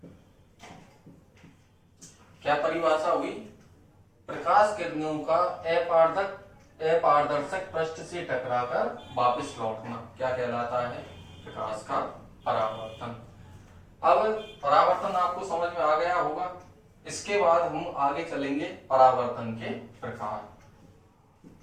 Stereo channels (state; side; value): identical; both; correlation 1.00